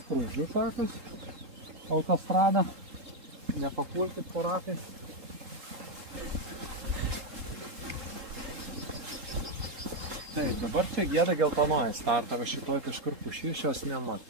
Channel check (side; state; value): left; late; 3.7 ms